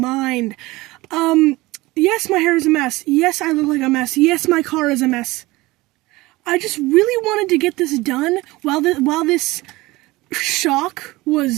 Yes, my hair is a mess. Yes, I look like a mess. Yes, my car is a mess. I just really wanted to get this done while this shock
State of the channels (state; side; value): quieter; left; 20.5 dB